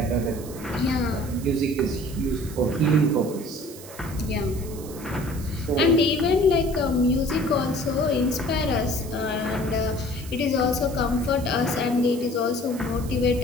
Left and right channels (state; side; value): noise; right; hiss, 16 dB below the sound